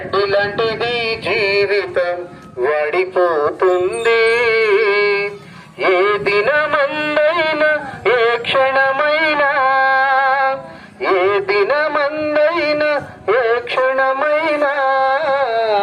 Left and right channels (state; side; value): identical; both; correlation 1.00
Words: లాంటిది జీవితం వాడిపోతుంది. ఏ దినమందైనా ఏ క్షణమైనా, ఏ దినమందైనా ఏ క్షణమైనా